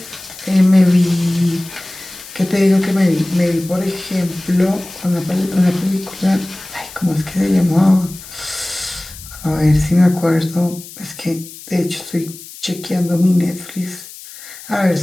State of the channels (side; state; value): left; noise; hiss, 16 dB below the sound